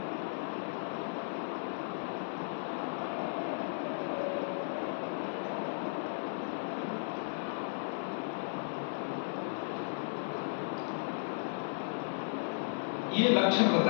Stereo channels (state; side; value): silent; right; 54 dB below the other